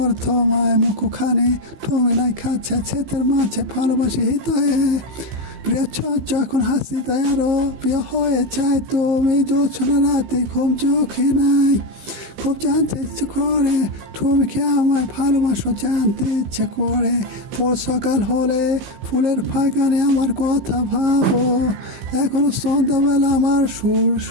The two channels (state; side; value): late; left; 15 ms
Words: তোমায় মুখখানি, তুমি নাই কাছে ছেতের মাঝে ভালোবাসি হৃদয়ে, প্রিয় যখন হাসিতে আরো প্রিয় হয়ে যায় তুমি, জোছনা রাতে ঘুম চোখে নাই, খুব জানতে ইচ্ছে করে তুমি কি আমায় ভালোবাসো, জানতে ইচ্ছে করে, ভোর সকাল হলে ফুলের বাগানে আমার কথা ভাবো, এখনো সন্ধ্যাবেলা আমার সুর